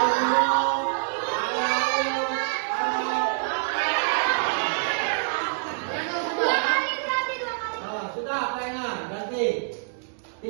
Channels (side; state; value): left; silent; digital silence